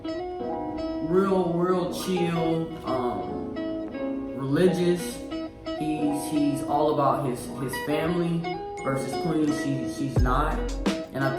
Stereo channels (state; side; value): identical; both; correlation 1.00